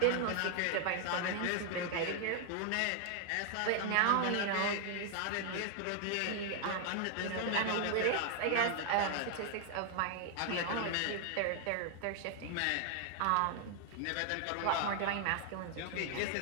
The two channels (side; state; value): both; different; correlation 0.00